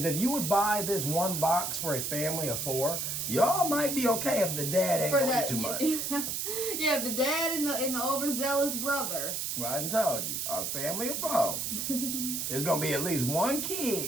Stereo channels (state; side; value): noise; right; hiss, 2 dB below the sound